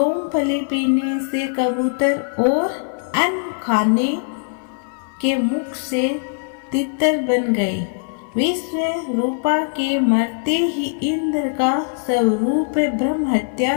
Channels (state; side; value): silent; right; 56 dB below the other